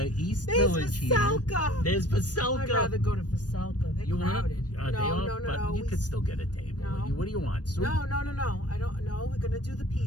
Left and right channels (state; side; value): late; right; 0.68 ms